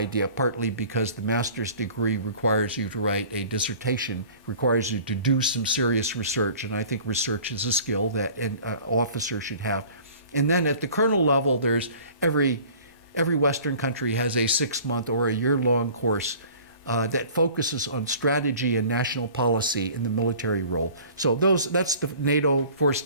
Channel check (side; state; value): both; inverted; correlation -0.47